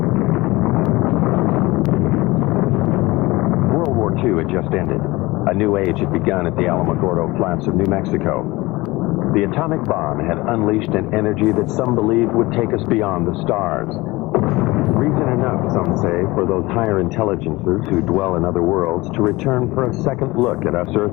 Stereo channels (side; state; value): right; quieter; 21.2 dB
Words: World War II had just ended. A new age had begun at the Alamogordo Flats of New Mexico. The atomic bomb had unleashed an energy that some believed would take us beyond the stars. Reason enough, some say, for those higher intelligences who dwell in other worlds to return for a second look at us